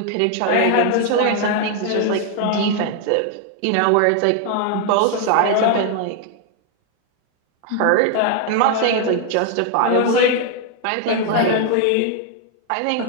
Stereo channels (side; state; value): both; different; correlation 0.01